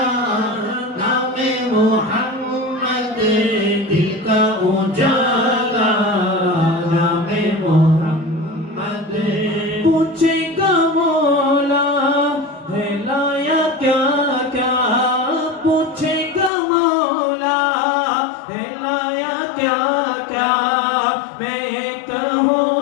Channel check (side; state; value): right; drops out; at 16.5 s